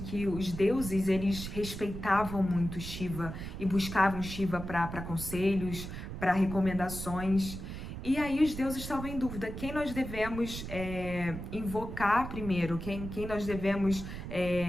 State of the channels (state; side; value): noise; right; rumble, 8 dB below the sound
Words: os deuses, eles respeitavam muito Shiva e buscavam Shiva para conselhos, para recomendações. E aí os deuses estavam em dúvida, quem nós devemos invocar primeiro, quem nós devemos